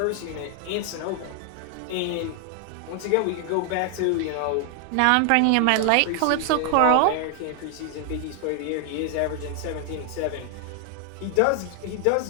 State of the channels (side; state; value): both; different; correlation 0.00